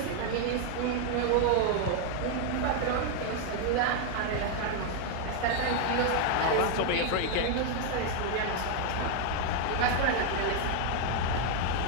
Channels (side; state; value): both; different; correlation 0.00